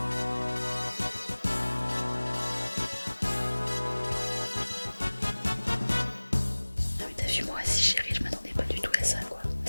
Ah mais t'as vu, moi aussi chérie, je m'attendais pas du tout à ça quoi.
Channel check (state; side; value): inverted; both; correlation -1.00